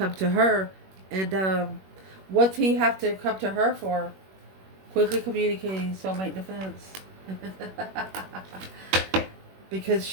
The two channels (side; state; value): left; late; 21 ms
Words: to her. And what's he have to come to her for? Quickly communicating soulmate defense. Because